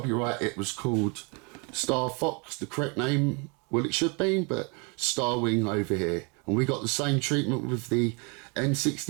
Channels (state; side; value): quieter; left; 32.6 dB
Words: It was called Star Fox, the correct name, well it should be, but Star Wing over here. And we got the same treatment with the